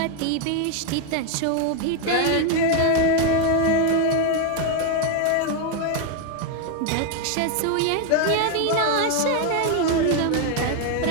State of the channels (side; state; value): both; different; correlation 0.01